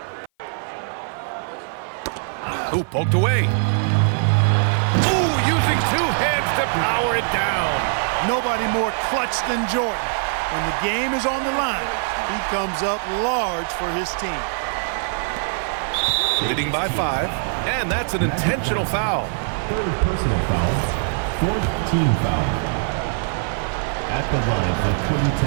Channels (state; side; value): silent; left; 56 dB below the other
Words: Ooh, poked away. Ooh, using 2 hands to power it down. Nobody more clutch than Jordan. When the game is on the line, he comes up large for his team. Leading by 5, and that's an intentional foul. Third personal foul. Fourth team foul. At the line for